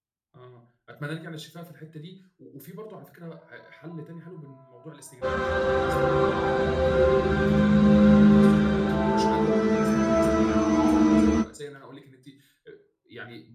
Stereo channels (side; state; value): both; identical; correlation 1.00